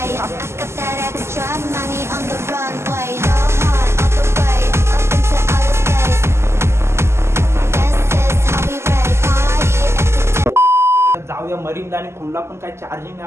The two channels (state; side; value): late; left; 0.13 ms